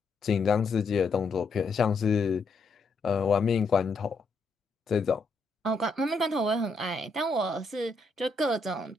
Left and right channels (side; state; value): right; quieter; 3.4 dB